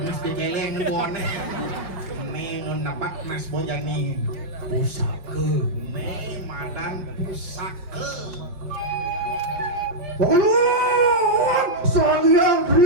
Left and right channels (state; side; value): late; left; 5.6 ms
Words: keceleng ngebone nih nun dapat mas bojani pusaka. nih madan pusaka Ulun sangyang